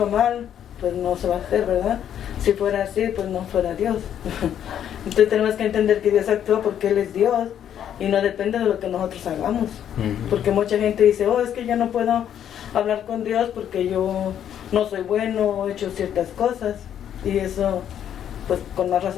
mal, pues no se va a hacer, ¿verdad? Si fuera así, pues no fuera Dios. Entonces tenemos que entender que Dios actúa porque Él es Dios y no depende de lo que nosotros hagamos. Porque mucha gente dice, oh, es que yo no puedo hablar con Dios porque yo no soy bueno o he hecho ciertas cosas. Y eso, pues con más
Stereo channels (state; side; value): quieter; right; 9.8 dB